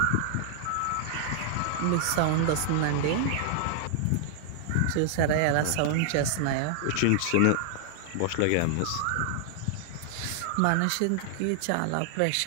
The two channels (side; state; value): both; different; correlation 0.00